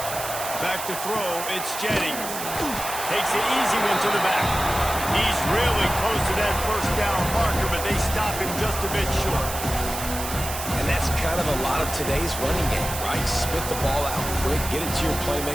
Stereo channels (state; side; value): noise; right; hiss, 7 dB below the sound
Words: Back to throw, it's Jennings. Takes the easy one to the back. He's really close to that first down marker, but they stop him just a bit short. And that's kind of a lot of today's running game, right? Spit the ball out quick, get it to your